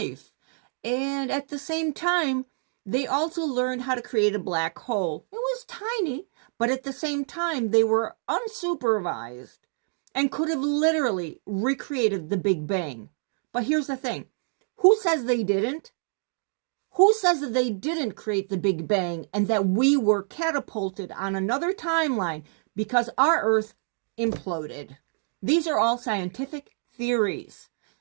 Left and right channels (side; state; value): left; silent; digital silence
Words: And at the same time, they also learned how to create a black hole. It was tiny, but at the same time, they were unsupervised and could have literally recreated the Big Bang. But here's the thing. Who says they didn't? Who says that they didn't create the Big Bang and that we were catapulted on another timeline because our Earth imploded? These are all scientific theories.